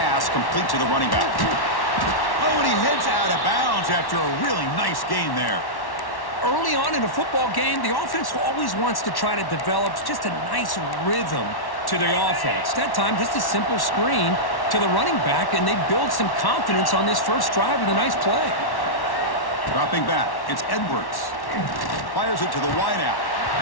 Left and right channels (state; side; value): late; right; 1.1 ms